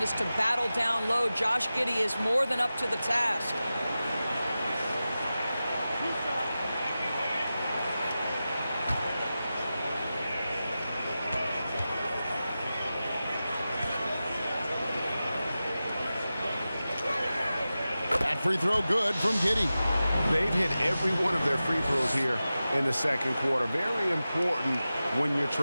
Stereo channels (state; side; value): inverted; both; correlation -0.94